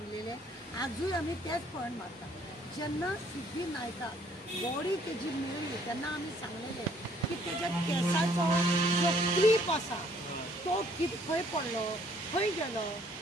आजूय आमी तेच पॉयंट मारता जेन्ना सिद्धी नायकाक बॉडी तेजी मेळ्ळी तेन्ना आमी सांगलेले की तेज्या केसाचो जो क्लीप आसा तो खंय पडलो खंय गेलो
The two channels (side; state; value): both; normal; correlation 0.62